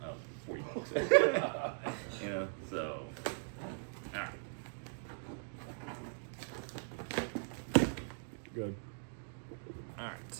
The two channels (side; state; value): left; silent; digital silence